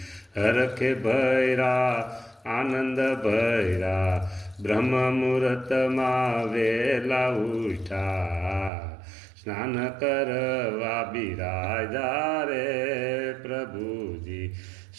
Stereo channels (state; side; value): drops out; left; at 8.7 s